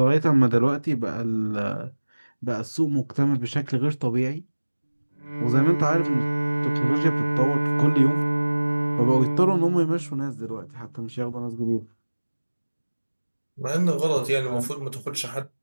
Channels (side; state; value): both; inverted; correlation -1.00